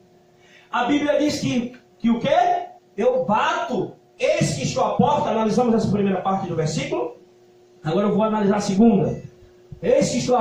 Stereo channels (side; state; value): both; identical; correlation 1.00